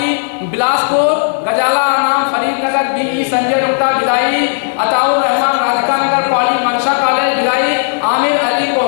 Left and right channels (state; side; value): silent; right; digital silence